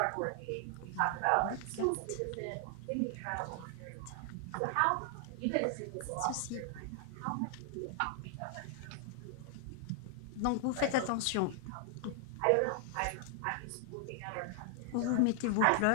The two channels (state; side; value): different; both; correlation 0.00